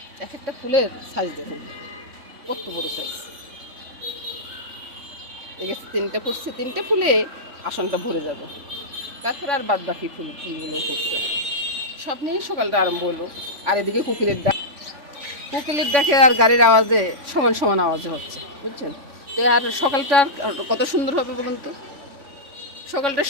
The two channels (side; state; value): left; late; 3.5 ms